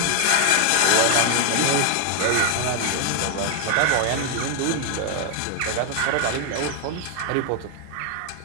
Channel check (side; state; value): both; different; correlation 0.00